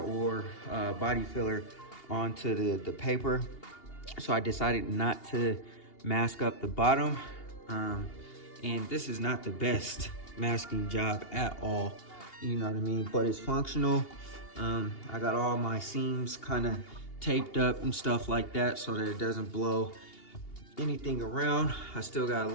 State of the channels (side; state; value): right; late; 2.8 ms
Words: body filler onto the paper. So I decided not to mask up the bottom. And this is not the best masking job at all, you know what I mean? But it's functional. I got all my seams kind of taped up and stuff like that so that it doesn't blow anything around. I still got a